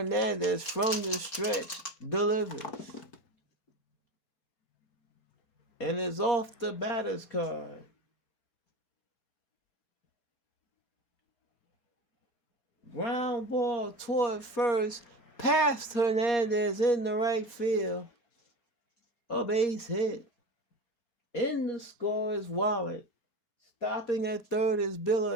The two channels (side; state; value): right; late; 4.4 ms